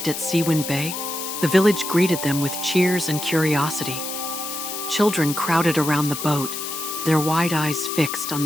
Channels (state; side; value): noise; left; hiss, 6 dB below the sound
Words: at Seawind Bay, the village greeted them with cheers and curiosity. Children crowded around the boat, their wide eyes fixed on